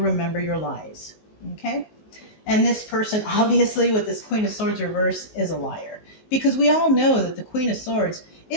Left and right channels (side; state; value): right; late; 19 ms